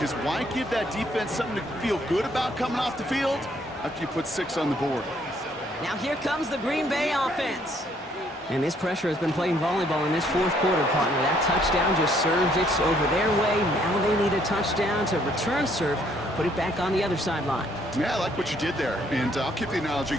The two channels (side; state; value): both; normal; correlation 0.66